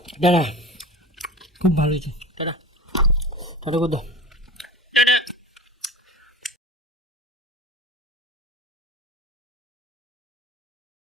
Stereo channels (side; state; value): both; normal; correlation 0.34